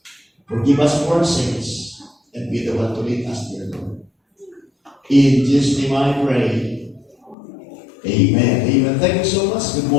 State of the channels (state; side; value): drops out; right; at 7.4 s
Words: Forgive us for our sins and be the one to lead us, dear Lord. In Jesus' name I pray. Amen. Amen. Thank you so much. Good